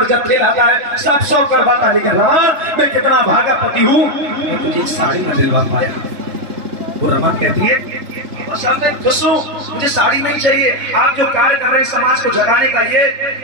जत्थे लाता है, सब शौक करवाता, लेकिन रमा मैं कितना भागा पति हूँ मैं तुझे साड़ी न दिलवा पाया। वो रमा कहती है सब मैं खुश हूँ, मुझे साड़ी नहीं चाहिए, आप जो कार्य कर रहे हैं समाज को जगाने का, ये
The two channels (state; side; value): late; left; 3.3 ms